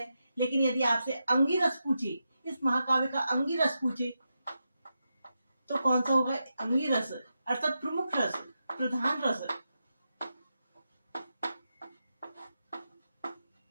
लेकिन यदि आपसे अंगी रस पूछे, इस महाकाव्य का अंगी रस पूछे, तो कौन सा होगा? अंगी रस अर्थात प्रमुख रस, प्रधान रस।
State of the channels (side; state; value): both; inverted; correlation -0.87